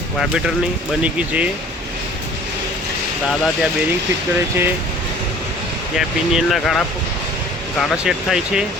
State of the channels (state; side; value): normal; both; correlation 0.49